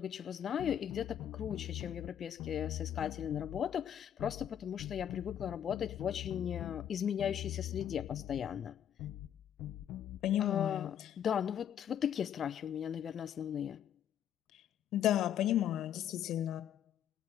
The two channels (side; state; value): right; quieter; 9.8 dB